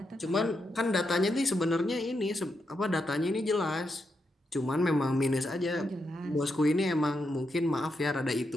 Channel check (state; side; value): normal; both; correlation 0.84